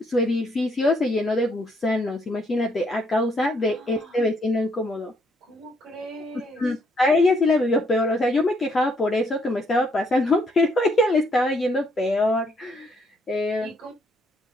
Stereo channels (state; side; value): normal; both; correlation 0.70